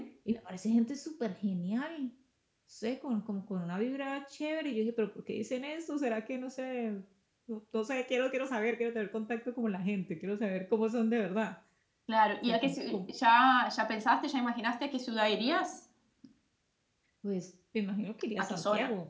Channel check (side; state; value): both; identical; correlation 1.00